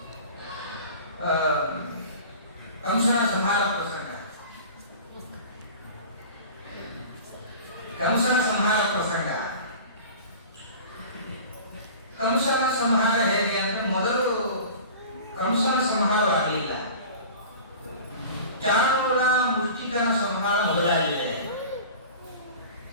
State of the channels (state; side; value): inverted; both; correlation -0.39